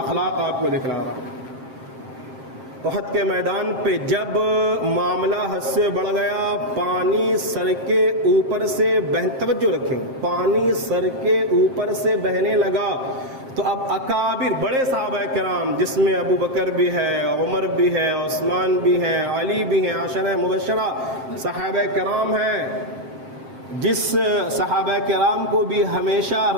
اخلاق آپ کو دکھلا رہا ہوں. احد کے میدان پہ جب معاملہ حد سے بڑھ گیا، پانی سر کے اوپر سے توجہ رکھیں، پانی سر کے اوپر سے بہنے لگا، تو اب اکابر بڑے صحابہ کرام جس میں ابو بکر بھی ہے، عمر بھی ہے، عثمان بھی ہے، علی بھی ہیں، عشرہ مبشرہ صحابہ کرام ہیں، جس صحابہ کرام کو بھی ہمیشہ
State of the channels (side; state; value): left; late; 7.6 ms